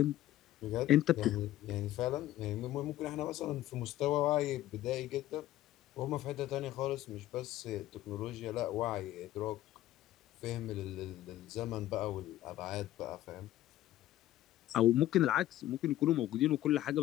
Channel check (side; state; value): right; quieter; 14.1 dB